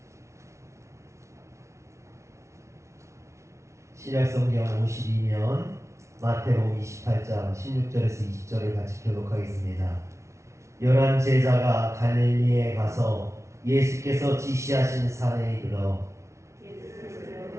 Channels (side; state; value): left; late; 0.14 ms